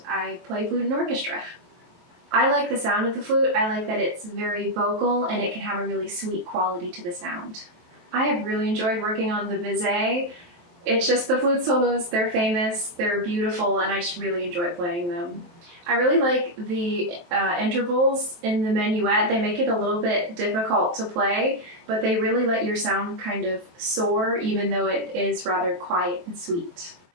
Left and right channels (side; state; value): left; late; 23 ms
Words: I play flute in orchestra. I like the sound of the flute. I like that it's very vocal and it can have a really sweet quality to the sound. I have really enjoyed working on the Bizet. It's just the flute solos, they're famous, they're beautiful, and I just really enjoy playing them. I really like the intervals in the minuet. They make it a little bit difficult to play, but they really let your sound kind of soar, even though it is rather quiet and sweet.